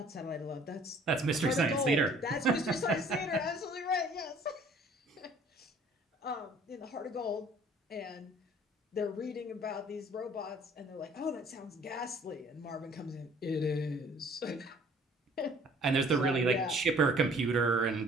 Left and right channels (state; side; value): normal; both; correlation 0.55